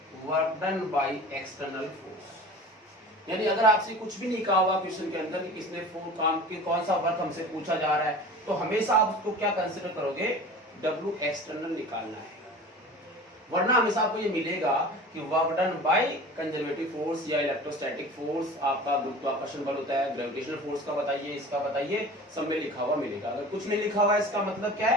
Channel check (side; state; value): both; normal; correlation 0.39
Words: work done by external force. यानी अगर आपसे कुछ भी नहीं कहा हुआ क्वेश्चन के अंदर कि किसने काम के कौन सा वर्क हमसे पूछा जा रहा है, तो हमेशा आप उसको क्या कंसीडर करोगे, W एक्सटर्नल निकालना है। वरना हमेशा आपको ये मिलेगा कि work done by conservative force या इलेक्ट्रोस्टैटिक फोर्स, आपका गुरुत्वाकर्षण बल होता है, ग्रेविटेशनल फोर्स का बताइए, इसका बताइए, सब में लिखा हुआ मिलेगा। अगर कुछ नहीं लिखा हुआ है इसका मतलब क्या